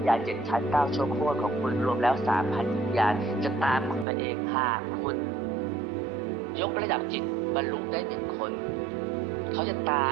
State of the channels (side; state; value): left; drops out; at 4.0 s